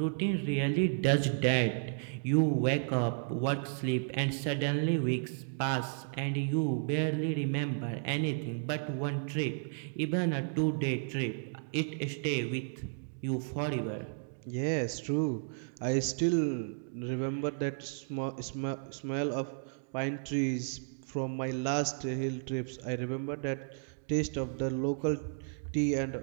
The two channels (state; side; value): silent; left; digital silence